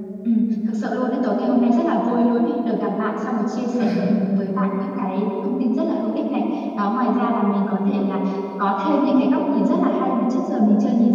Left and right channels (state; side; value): identical; both; correlation 1.00